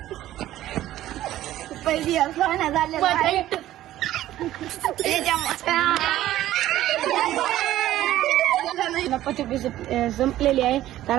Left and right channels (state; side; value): quieter; left; 13.9 dB